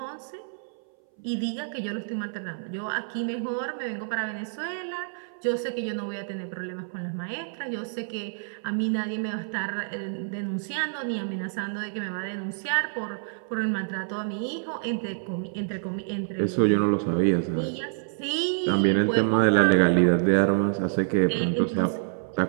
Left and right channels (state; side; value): silent; left; 59 dB below the other